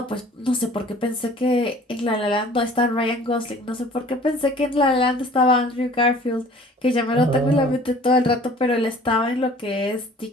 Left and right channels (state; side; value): normal; both; correlation 0.49